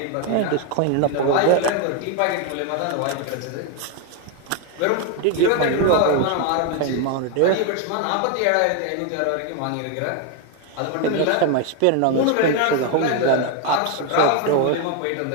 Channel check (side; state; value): both; different; correlation 0.01